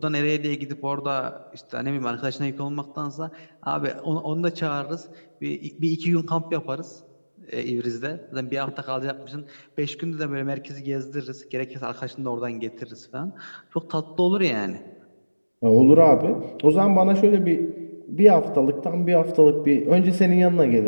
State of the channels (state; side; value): inverted; both; correlation -1.00